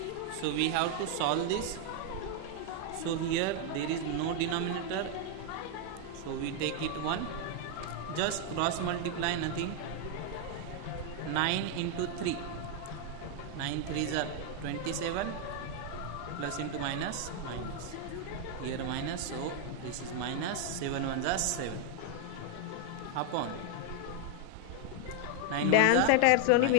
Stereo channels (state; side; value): different; both; correlation 0.00